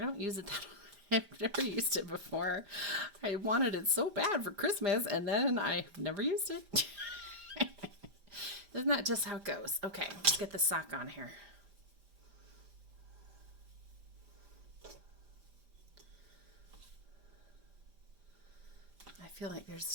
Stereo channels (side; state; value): left; late; 5.0 ms